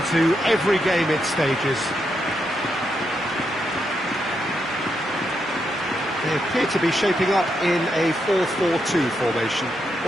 to every game it stages. They appear to be shaping up in a 4-4-2 formation.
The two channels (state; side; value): normal; both; correlation 0.82